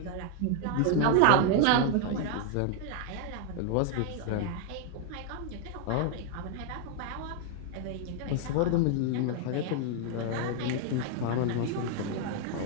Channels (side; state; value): both; different; correlation 0.00